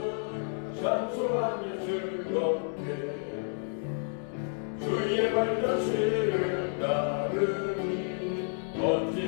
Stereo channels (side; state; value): right; silent; 58 dB below the other